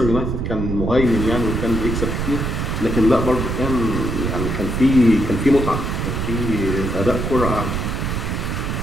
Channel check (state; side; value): noise; right; rumble, 2 dB below the sound